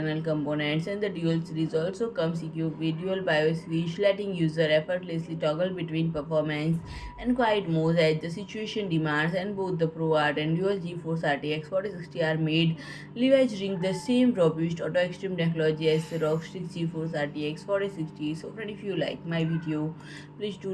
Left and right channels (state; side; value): identical; both; correlation 1.00